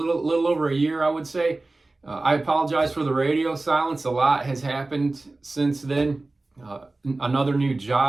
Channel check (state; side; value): quieter; left; 3.1 dB